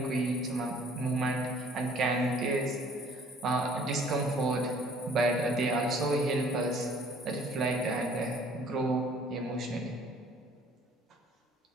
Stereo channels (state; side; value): normal; both; correlation 0.56